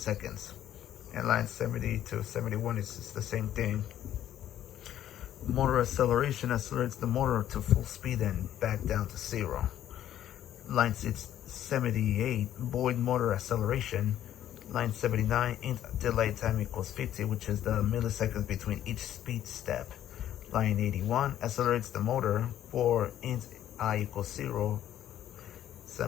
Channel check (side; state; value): right; quieter; 11.6 dB